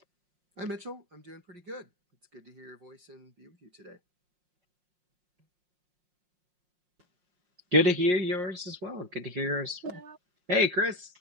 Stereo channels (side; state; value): left; late; 5.5 ms